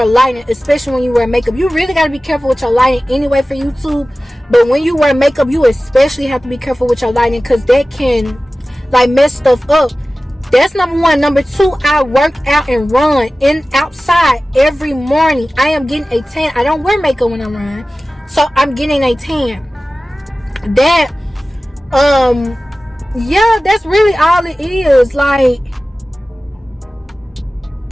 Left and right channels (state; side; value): normal; both; correlation 0.96